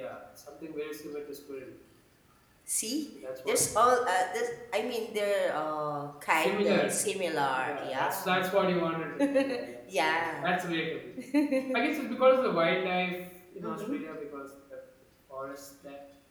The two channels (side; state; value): both; identical; correlation 1.00